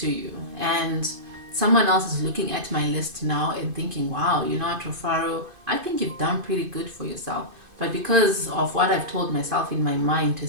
you. And someone else is looking at my list now and thinking, wow, you know what, Rufaro, I think you've done pretty good for yourself. But because of what I've told myself in my mind to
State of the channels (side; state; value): left; late; 2.5 ms